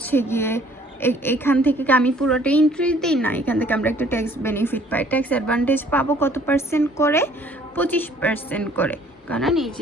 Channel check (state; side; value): normal; both; correlation 0.58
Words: গিয়ে এখান থেকে আমি পুরোটাই ইন্টারেস্ট দিই না, এখান থেকে আমরা একটা ট্যাক্স বেনিফিট পাই, ট্যাক্স অ্যাডভান্টেজ পাবো কত পার্সেন্ট করে, 25% করে, কারণ এই